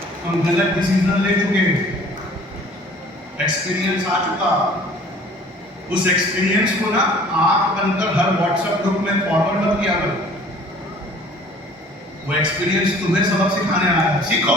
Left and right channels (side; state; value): both; normal; correlation 0.51